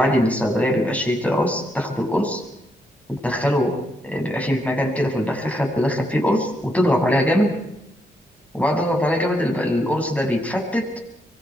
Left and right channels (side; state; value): both; normal; correlation 0.78